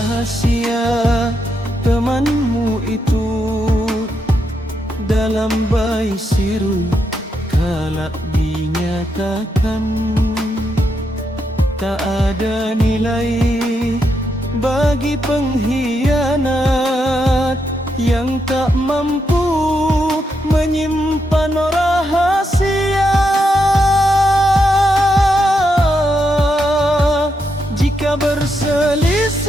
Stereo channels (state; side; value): normal; both; correlation 0.82